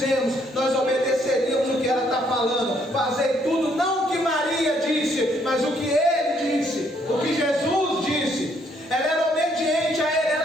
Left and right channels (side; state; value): both; normal; correlation 0.68